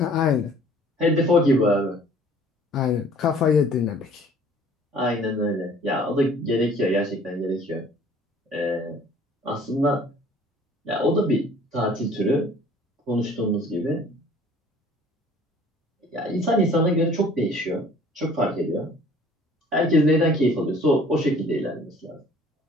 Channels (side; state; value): both; normal; correlation 0.52